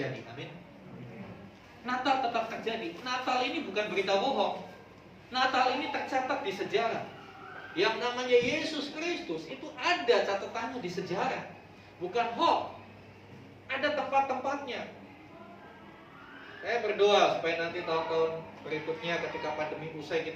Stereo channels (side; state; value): both; identical; correlation 1.00